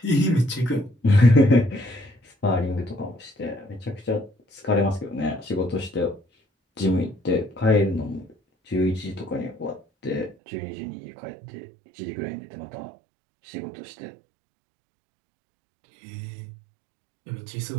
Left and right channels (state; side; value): drops out; left; at 10.4 s